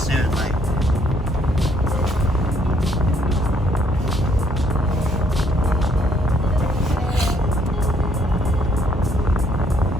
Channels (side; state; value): both; normal; correlation 0.68